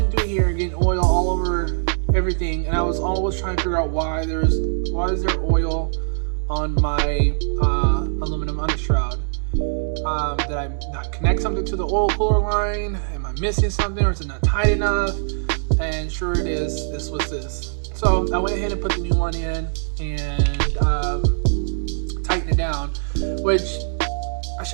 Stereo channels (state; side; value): silent; left; digital silence